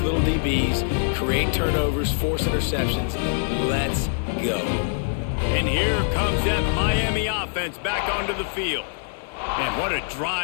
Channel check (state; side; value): silent; right; digital silence